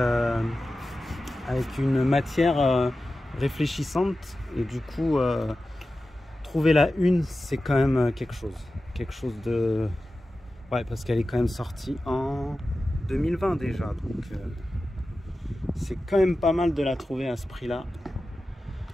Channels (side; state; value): both; normal; correlation 0.94